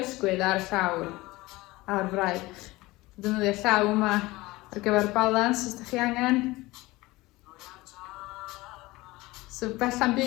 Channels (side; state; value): right; quieter; 20.3 dB